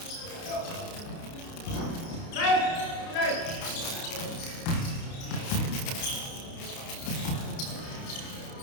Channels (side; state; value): right; late; 30 ms